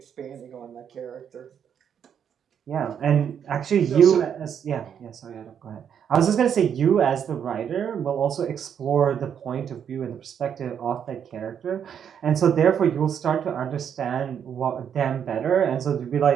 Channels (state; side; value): quieter; left; 8.3 dB